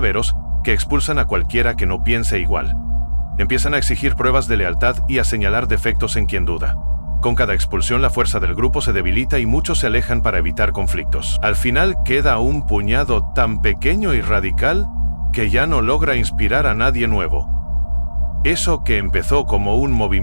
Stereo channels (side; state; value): both; inverted; correlation -1.00